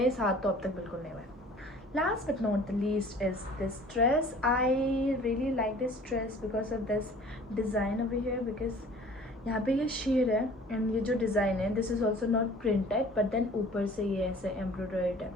साथ तो अब तक बिल्कुल नहीं हुआ है. Last but not the least is this dress. I really like this dress because of this design over here, because यहाँ पे ये शेड है एंड ये जो डिज़ाइन है this is also not printed but then ऊपर से ये ऐसे एम्ब्रॉयडर्ड है.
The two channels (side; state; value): both; normal; correlation 0.49